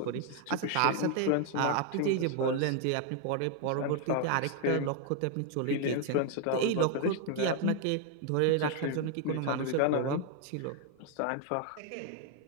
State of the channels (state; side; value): different; both; correlation 0.01